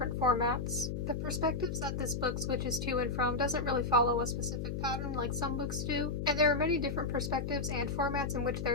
formats. The perspectives that this book switches to and from doesn't really follow a specific pattern like some books do, and there are many different perspectives and formats in which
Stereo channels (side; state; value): left; noise; hum, 3 dB below the sound